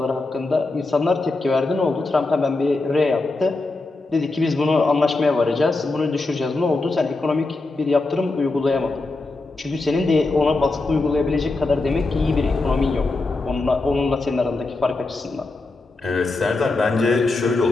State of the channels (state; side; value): quieter; right; 3.3 dB